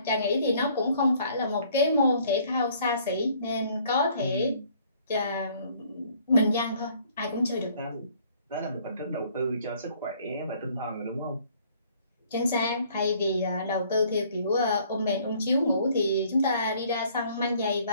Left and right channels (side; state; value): both; inverted; correlation -0.60